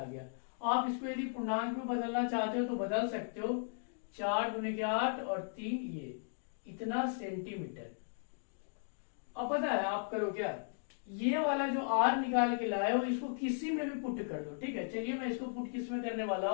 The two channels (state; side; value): silent; right; digital silence